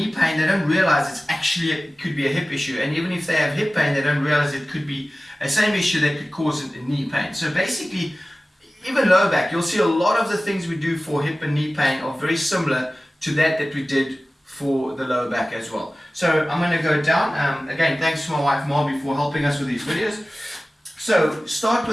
pain, they don't realize it could be a hip issue. And even if they have hip pain, they don't realize it could be a same issue that could cause a knee pain. So basically, even lower back, you'll see a lot of the things we do for hip and knee pain are very similar to that we did for the lower back as well. So I'm going to go down. Again, thanks to my wife Marby for helping us with these videos. So start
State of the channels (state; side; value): normal; both; correlation 0.97